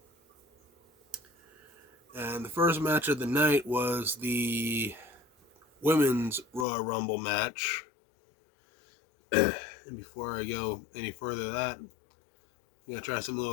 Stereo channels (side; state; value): right; drops out; at 6.7 s